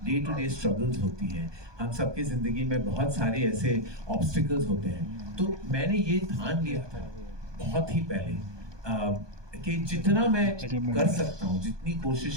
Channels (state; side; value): late; left; 1.2 ms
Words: डे टू डे स्ट्रगल्स होती हैं. हम सबके ज़िंदगी में बहुत सारे ऐसे ऑब्स्टिकल्स होते हैं. तो मैंने ये ठान लिया था बहुत ही पहले कि जितना मैं कर सकता हूँ, जितनी